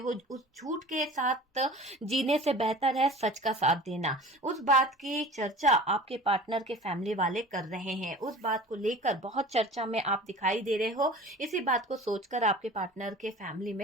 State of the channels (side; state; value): both; normal; correlation 0.41